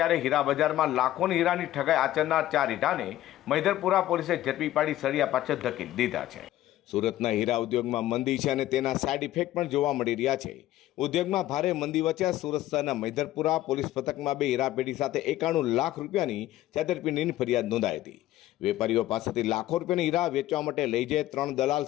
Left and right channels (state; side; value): quieter; right; 14.4 dB